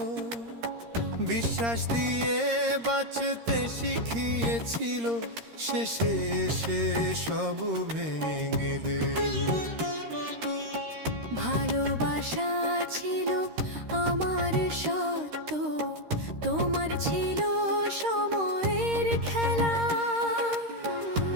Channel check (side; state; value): left; late; 13 ms